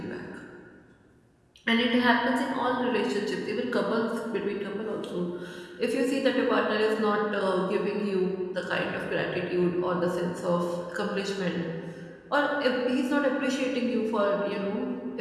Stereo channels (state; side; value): identical; both; correlation 1.00